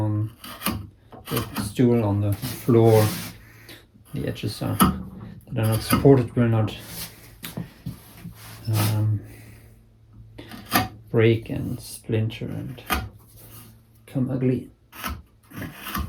the stool on the floor, the edges that are not supported will not break and splinter and come ugly.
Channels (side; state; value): both; identical; correlation 1.00